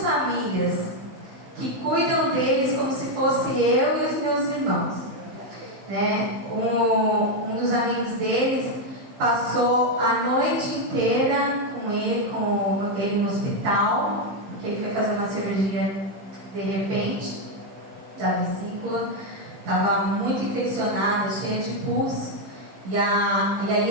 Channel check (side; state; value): left; late; 15 ms